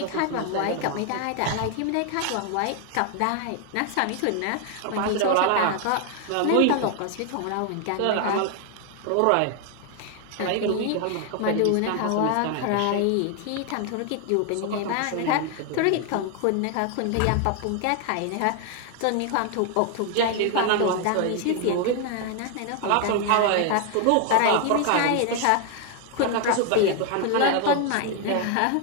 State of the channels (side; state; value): both; different; correlation 0.01